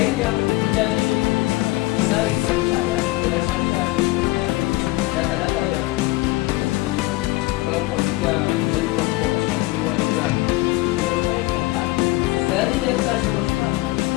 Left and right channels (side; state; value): right; quieter; 20.2 dB